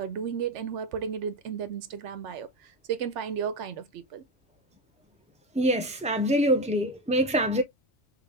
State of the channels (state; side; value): normal; both; correlation 0.14